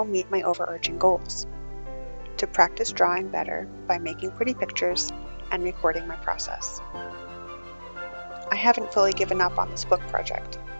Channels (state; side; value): inverted; both; correlation -1.00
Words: meet my overarching goals: to practice drawing better by making pretty pictures and recording my process. I haven't fully given up on this book project,